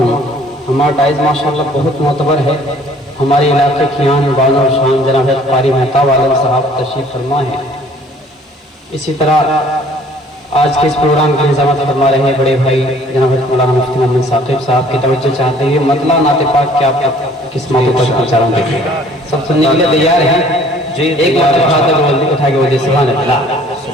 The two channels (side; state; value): both; normal; correlation 0.55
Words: ہمارا ڈائز ماشاءاللہ بہت معتبر ہے۔ ہمارے علاقے کی آن بان اور شان جناب قاری مہتاب عالم صاحب تشریف فرما ہے۔ اسی طرح آج کے اس پروگرام کی نظامت فرما رہے ہیں بڑے بھائی جناب مولانا مفتی محمد ثاقب صاحب کی توجہ چاہتے ہیں۔ مطلع نعت پاک کیا قسمت پر پہنچا رہا ہوں، سب سننے کے لیے تیار ہیں؟ ایک بار ہاتھ اٹھا کے بولے سبحان اللہ۔